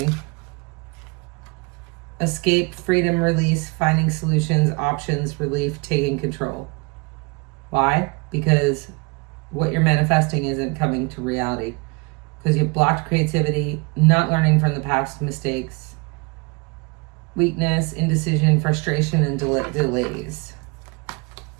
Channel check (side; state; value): left; quieter; 29.8 dB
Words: Escape, freedom, release, finding solutions, options, relief, taking control. Why? Because what you're manifesting isn't coming to reality. Because you've blocked creativity, not learning from the past mistakes, weakness, indecision, frustration, and delays.